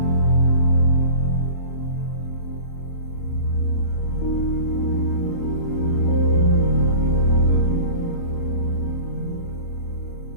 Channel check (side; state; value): right; late; 30 ms